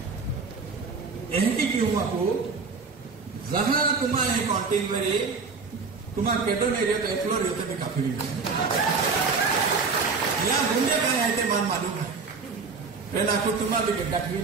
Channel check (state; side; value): quieter; left; 4.7 dB